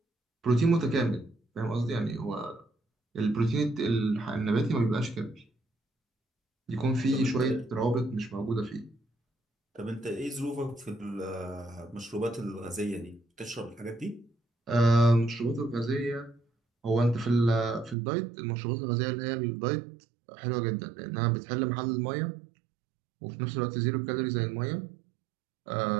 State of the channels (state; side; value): drops out; left; at 17.9 s